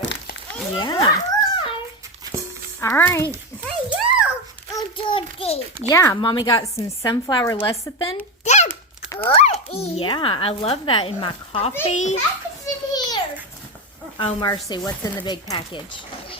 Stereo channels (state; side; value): normal; both; correlation 0.15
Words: Yeah. All right. Hey, you. Yeah, Mommy got some sunflower lecithin. That's good. Yeah, I love that in my coffee. Package in here. Oh, mercy. What's in the big package?